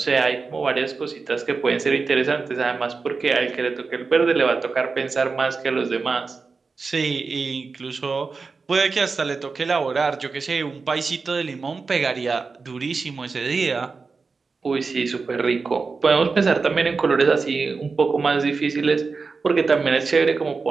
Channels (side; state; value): left; quieter; 4.5 dB